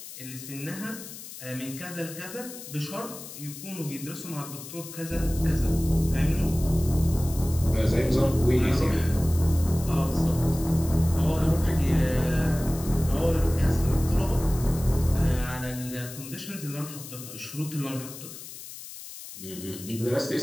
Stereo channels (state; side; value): noise; left; hiss, 13 dB below the sound